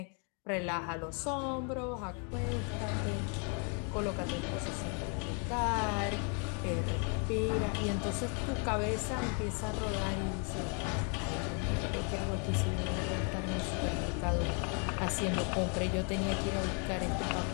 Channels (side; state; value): right; quieter; 38.6 dB